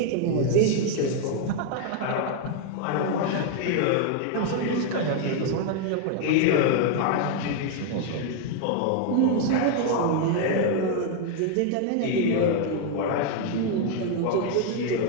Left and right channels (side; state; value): both; different; correlation 0.00